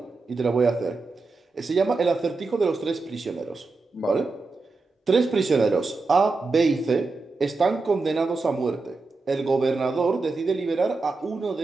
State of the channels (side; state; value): left; quieter; 3.8 dB